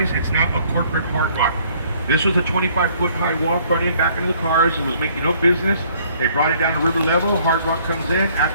It's not a corporate Hard Rock. This was a 25-foot high wall front and back into the cars. It was making no business. They brought it down to river level. Hard Rock comes in.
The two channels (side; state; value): both; inverted; correlation -0.61